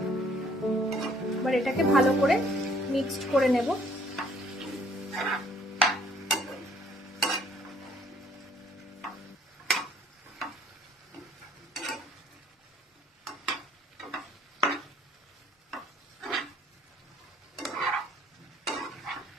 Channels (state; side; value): normal; both; correlation 0.62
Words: এবার এটাকে ভালো করে মিক্সড করে নেব।